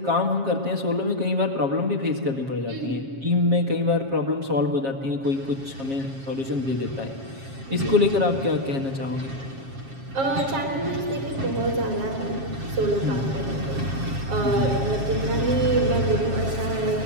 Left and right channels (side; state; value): left; late; 7.4 ms